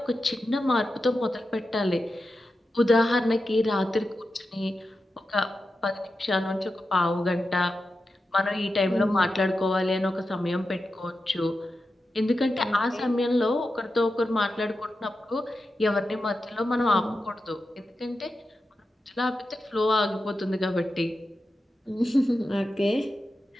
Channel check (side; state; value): both; normal; correlation 0.90